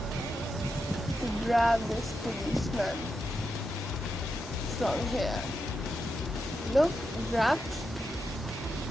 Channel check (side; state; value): both; normal; correlation 0.86